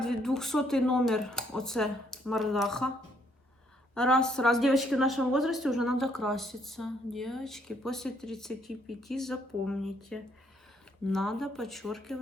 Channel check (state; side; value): normal; both; correlation 0.69